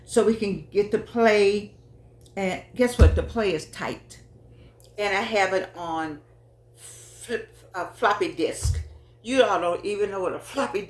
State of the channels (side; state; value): both; identical; correlation 1.00